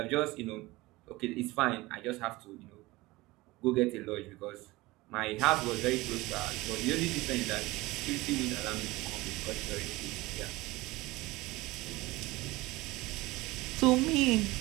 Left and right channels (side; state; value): left; quieter; 20.6 dB